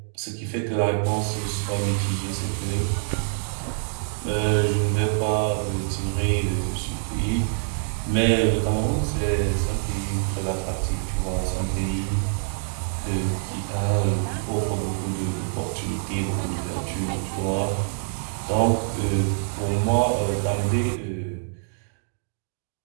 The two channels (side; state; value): left; silent; digital silence